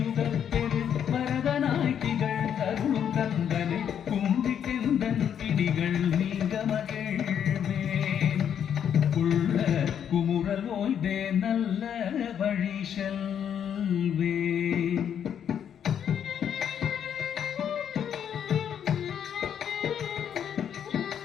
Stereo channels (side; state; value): right; quieter; 8.8 dB